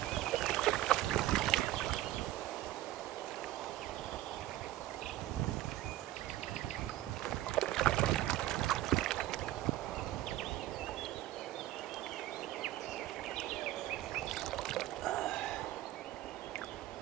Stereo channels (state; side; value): quieter; left; 14.9 dB